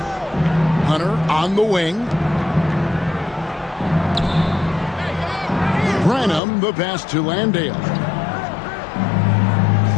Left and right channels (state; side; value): drops out; right; at 6.4 s